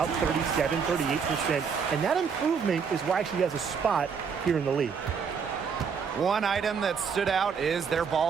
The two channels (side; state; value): left; quieter; 6.3 dB